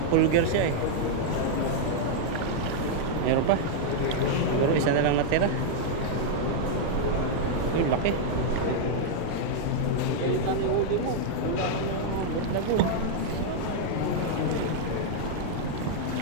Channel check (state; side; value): different; both; correlation -0.01